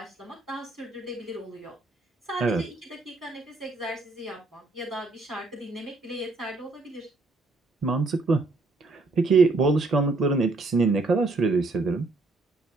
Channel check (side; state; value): left; quieter; 3.3 dB